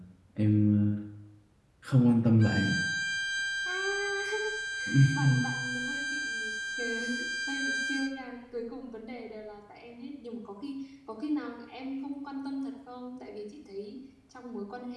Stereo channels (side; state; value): both; identical; correlation 1.00